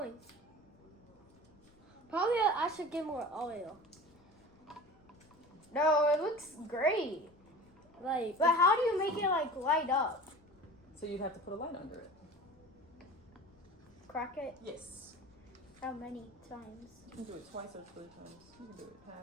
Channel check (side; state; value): left; noise; rumble, 29 dB below the sound